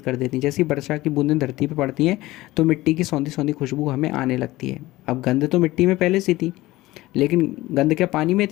देती हैं। जैसी वर्षा की बूंदें धरती पर पड़ती हैं तो मिट्टी की सौंधी सौंधी खुशबू हमें आने लगती है। अब गंध तो मिट्टी में पहले से थी, लेकिन गंध क्या पानी में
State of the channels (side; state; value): right; quieter; 18.2 dB